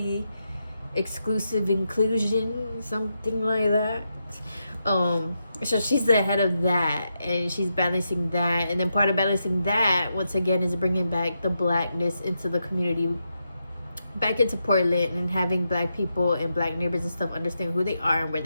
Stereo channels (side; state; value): both; inverted; correlation -0.84